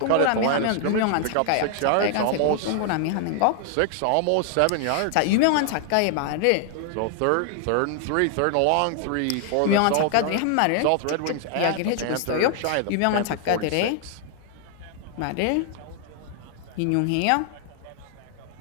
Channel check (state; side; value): different; both; correlation 0.00